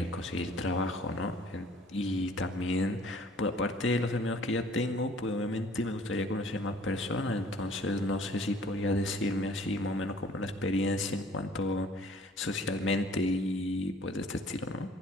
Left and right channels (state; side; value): normal; both; correlation 0.54